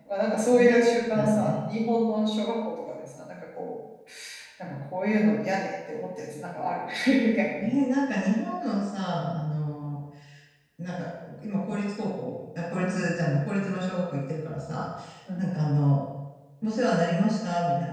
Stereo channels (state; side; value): identical; both; correlation 1.00